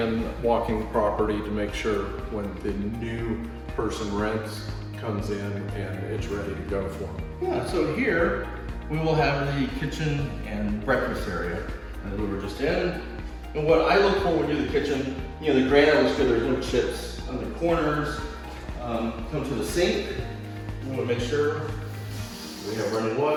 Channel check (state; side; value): identical; both; correlation 1.00